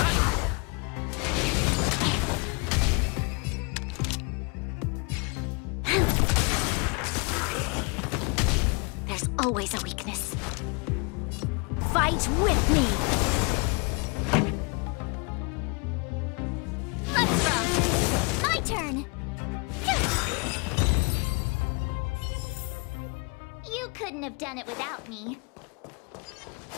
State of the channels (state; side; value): quieter; right; 32.2 dB